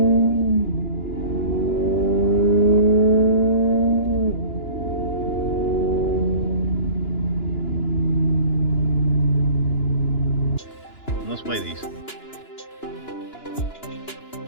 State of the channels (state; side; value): late; right; 2.9 ms